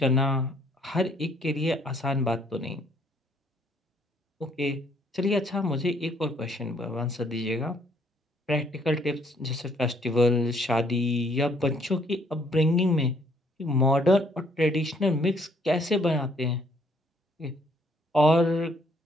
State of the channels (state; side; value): normal; both; correlation 0.66